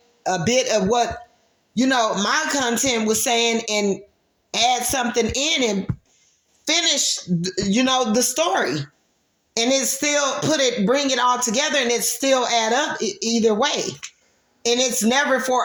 a bit of what, my content was saying and add something in and finish, the story. And it's still bring it all together, and it still add up either way. And it's never for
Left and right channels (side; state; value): both; identical; correlation 1.00